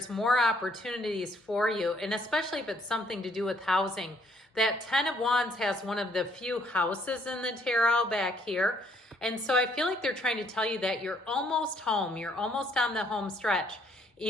more opportunities for you, and especially if it's something to do with housing. That 10 of Wands has one of the few houses in the tarot back here. And so I feel like they're trying to tell you that you're almost home. You're almost on the home stretch.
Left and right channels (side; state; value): both; normal; correlation 0.67